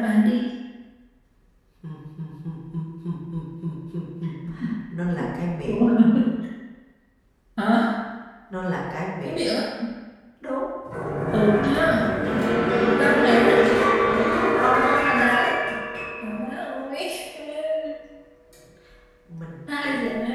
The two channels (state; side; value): identical; both; correlation 1.00